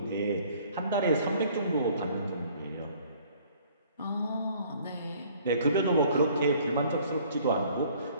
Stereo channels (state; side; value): inverted; both; correlation -0.56